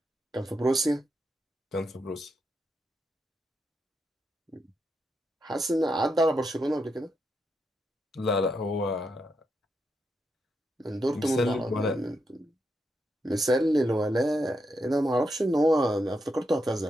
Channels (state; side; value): normal; both; correlation 0.83